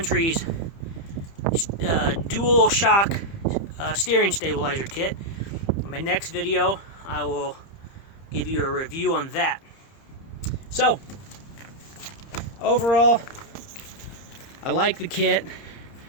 dual shock steering stabilizer kit. In my next video, I will give you a review on that. So, overall, I like the kit.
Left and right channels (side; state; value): right; late; 30 ms